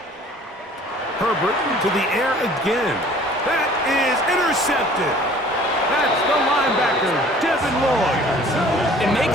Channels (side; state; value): both; normal; correlation 0.51